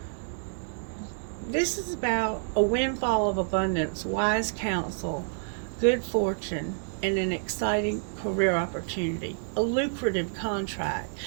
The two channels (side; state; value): left; silent; 59 dB below the other